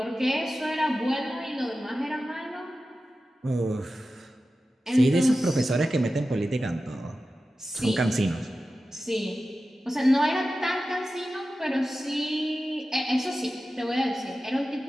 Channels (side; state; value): both; normal; correlation 0.94